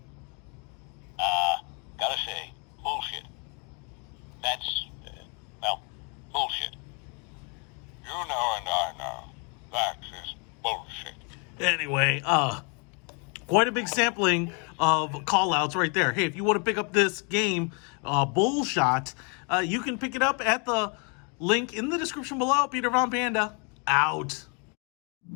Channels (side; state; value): right; quieter; 35.6 dB